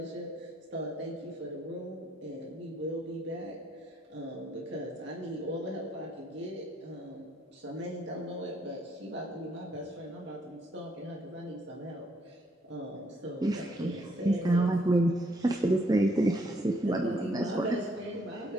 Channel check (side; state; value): both; normal; correlation 0.69